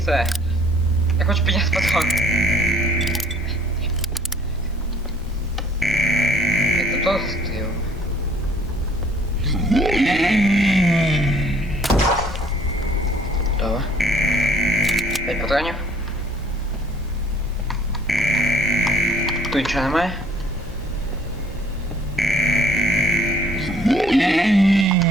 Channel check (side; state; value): both; normal; correlation 0.59